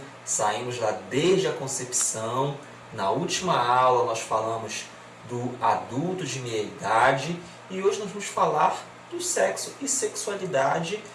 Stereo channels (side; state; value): both; identical; correlation 1.00